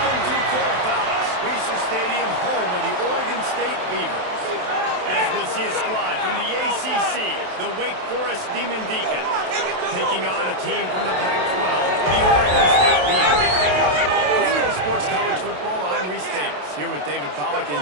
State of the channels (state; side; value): late; left; 27 ms